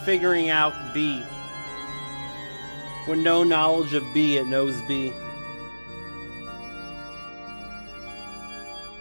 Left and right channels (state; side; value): inverted; both; correlation -1.00